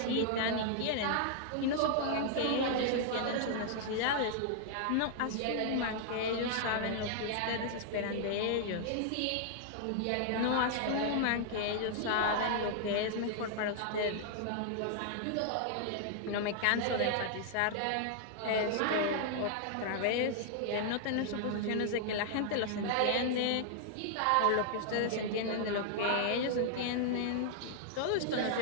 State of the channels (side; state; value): both; different; correlation -0.01